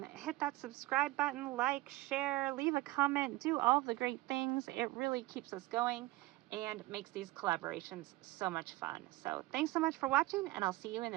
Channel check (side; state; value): left; quieter; 18.6 dB